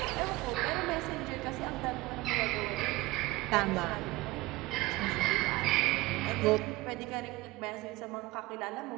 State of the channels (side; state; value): left; quieter; 20.2 dB